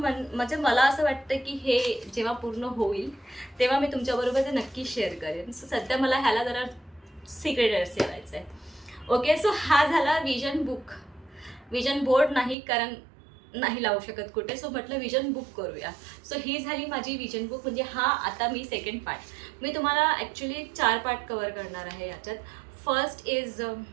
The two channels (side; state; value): left; drops out; at 12.6 s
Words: मला असं वाटतं की हे जेव्हा पूर्ण होईल तेव्हा मी तुमच्याबरोबर ते नक्की शेअर करेन. सो सध्या मला ह्याला जरा सिक्रेट ठेवायचं आहे. ओके. सो हा झाला विजन बुक. विजन बोर्ड नाही, कारण नाही लावू शकत कुठे. सो म्हटलं विजन बुक करूया. सो ही झाली माझी विजन बुक. म्हणजे हा आता मी सेकंड पार्ट, मी तुम्हाला ॲक्च्युली 4 पार्ट कवर करणार आहे याच्यात. फर्स्ट इज